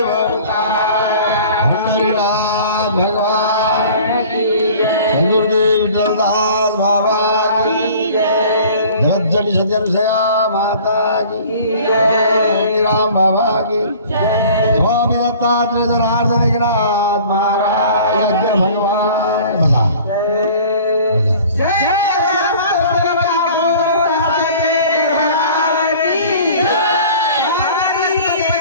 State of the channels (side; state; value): both; inverted; correlation -0.46